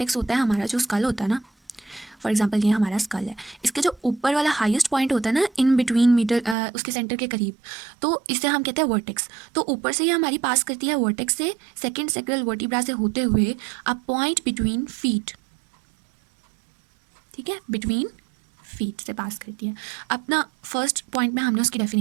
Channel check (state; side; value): drops out; left; at 6.6 s